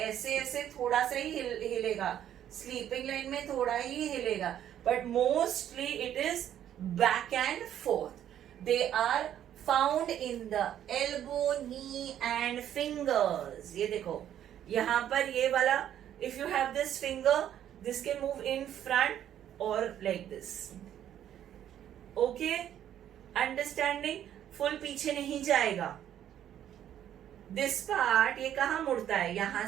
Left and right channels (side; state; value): left; quieter; 10.7 dB